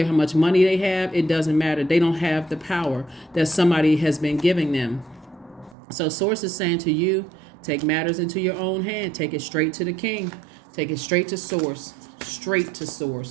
how much money they have. It doesn't matter. They don't have the power that somebody has been giving them. So Source is saying to you, take matters into your own hand. Take it straight to the king. Take it straight to Source. Straight to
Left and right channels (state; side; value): drops out; left; at 5.8 s